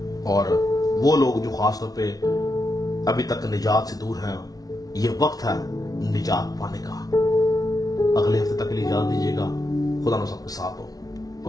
اور وہ لوگ جو خاص طور پہ ابھی تک نجات سے دور ہیں، یہ وقت ہے نجات پانے کا۔ اگلے ہفتے تک کے لیے اجازت دیجیے گا۔ خدا آپ سب کے ساتھ ہو۔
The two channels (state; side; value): late; right; 0.18 ms